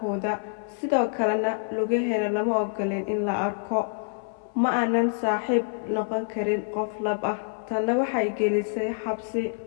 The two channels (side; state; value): right; silent; 60 dB below the other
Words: sidoo kalena lugaheena lama ogoleen in la arko. Ma aanan saaxiib noqon karin qof lab ah, tanna waxay gelisay xabsi.